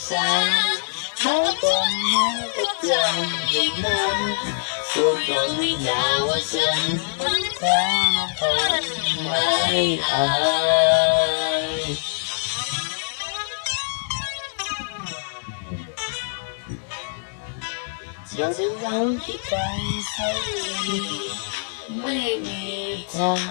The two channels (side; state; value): right; silent; digital silence